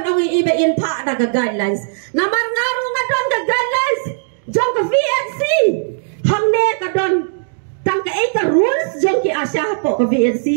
ong ibe in pa na ka guidelines namar ngaru nga don ka guidelines jong ka VNC hangne ka don tang ka ka rules jong ki Asha hapo ka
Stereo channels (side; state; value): left; silent; digital silence